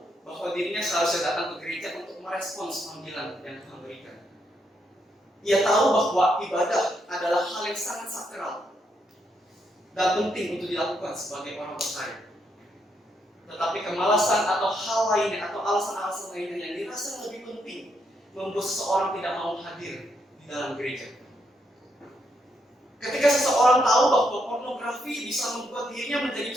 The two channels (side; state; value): both; normal; correlation 0.77